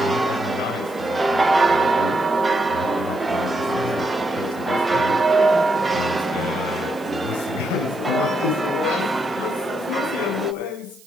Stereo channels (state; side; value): noise; right; hiss, 25 dB below the sound